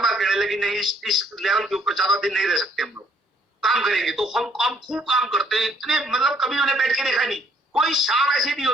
कहने लगी नहीं इस लेवल के ऊपर ज्यादा दिन नहीं रह सकते, हम लोग काम करेंगे। तो हम खूब काम करते हैं, इतने मतलब कभी उन्हें बैठ के देखा नहीं। कोई शाम ऐसी नहीं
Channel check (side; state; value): both; normal; correlation 0.64